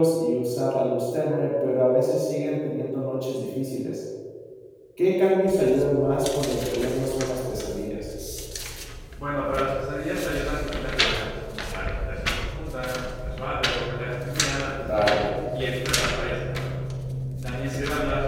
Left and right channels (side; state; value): both; identical; correlation 1.00